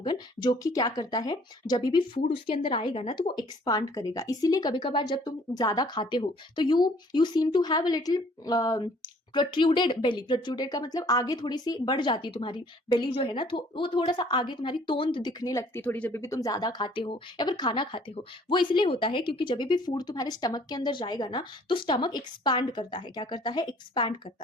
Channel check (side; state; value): both; normal; correlation 0.57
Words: जो कि क्या करता है, जब भी फूड उसके अंदर आएगा ना तो वो एक्सपांड करेगा। इसीलिए कभी कभार जब तुम ज्यादा खाते हो तो you seem to have a little protruded belly, protruded का मतलब आगे थोड़ी सी बढ़ जाती है तुम्हारी बेली जो है ना, तो वो थोड़ा सा आगे तुम्हारी तोंद दिखने लगती है थोड़ी, जब भी तुम ज्यादा खाते हो या फिर खाना खाते हो। वो इसलिए होता है क्योंकि जब भी फूड तुम्हारे स्टमक के अंदर जाएगा ना तो स्टमक एक्सपैंड करता है, क्या करता है, एक्सपैंड